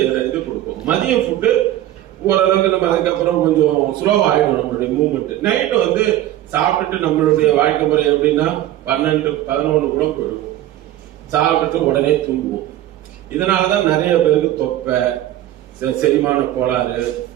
இது கொடுக்கும். மதிய ஃபுட்டு ஓரளவுக்கு நம்ம அதுக்கப்புறம் கொஞ்சம் ஸ்லோவா ஆயிடும் நம்மளுடைய மூவ்மெண்ட். நைட்டு வந்து சாப்பிட்டுட்டு நம்மளுடைய வாழ்க்கை முறை எப்படின்னா 12-11 கூட போயிடுவோம். சாப்பிட்டுட்டு உடனே தூங்குவோம். இதனாலதான் நிறைய பேருக்கு தொப்பை, செரிமான கோளாறு,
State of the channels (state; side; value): quieter; left; 13.6 dB